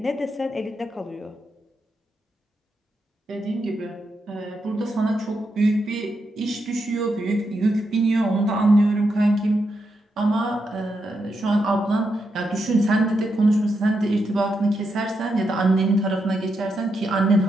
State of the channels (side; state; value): both; normal; correlation 0.83